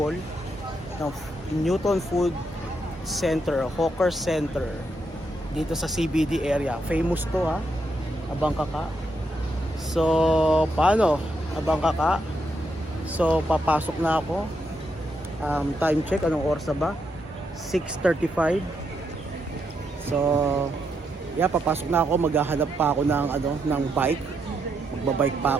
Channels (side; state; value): both; normal; correlation 0.80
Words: ng Newton Food Center, Hawker Center dito sa CBD area. Famous to, ha, abang kaka. So paano, abang kaka? So papasok na ako. Time check, anong oras na ba? 6:35. So yeah, papasok na ako. Maghahanap pa ako ng bike. Magbabike pa